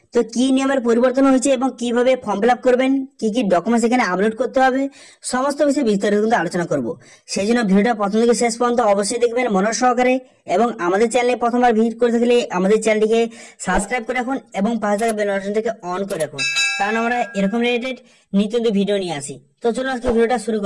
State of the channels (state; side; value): identical; both; correlation 1.00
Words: তো কি নিয়মের পরিবর্তন হয়েছে এবং কিভাবে ফর্ম ফিল আপ করবেন, কি কি ডকুমেন্টস এখানে আপলোড করতে হবে, সমস্ত বিষয়ে বিস্তারিত কিন্তু আলোচনা করব। সেই জন্য ভিডিওটা প্রথম থেকে শেষ পর্যন্ত অবশ্যই দেখবেন মনোযোগ সহকারে। এবং আমাদের চ্যানেলে প্রথমবার ভিজিট করে থাকলে আমাদের চ্যানেলটিকে সাবস্ক্রাইব করে রাখুন এবং পাশে থাকা বেল বাটনটিকে অন করে রাখুন, কারণ আমরা এরকম রিলেটেড নিত্য ভিডিও নিয়ে আসি। তো চলুন আজকে ভিডিওটা শুরু